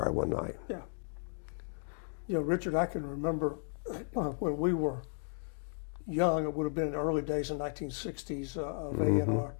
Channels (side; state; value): right; silent; 55 dB below the other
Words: one night. Yeah. Richard, I can remember when we were young, it would have been in the early days in 1960s of A&R,